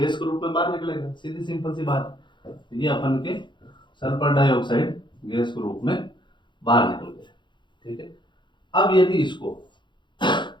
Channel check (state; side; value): late; right; 0.23 ms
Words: के रूप में बाहर निकलेगा, सीधी सिंपल सी बात। ये अपन के सल्फर डाइऑक्साइड गैस के रूप में बाहर निकल गया, ठीक है। अब यदि इसको